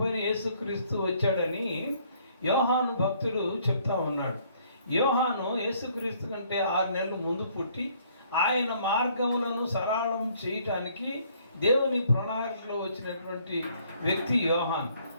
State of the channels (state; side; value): inverted; both; correlation -0.64